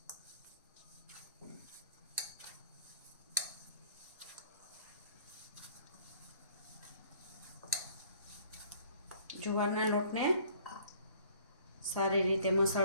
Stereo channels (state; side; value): inverted; both; correlation -0.55